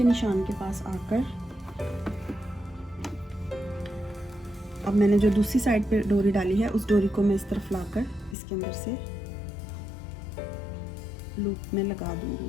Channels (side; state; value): right; drops out; at 8.3 s